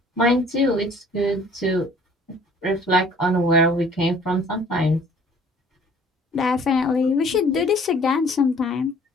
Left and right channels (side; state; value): both; normal; correlation 0.54